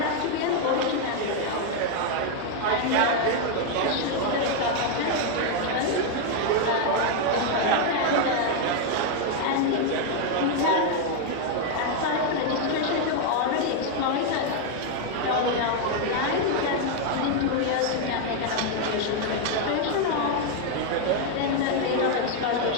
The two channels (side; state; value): both; different; correlation 0.01